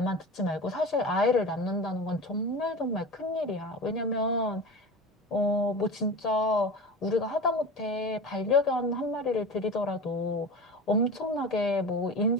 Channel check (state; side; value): normal; both; correlation 0.31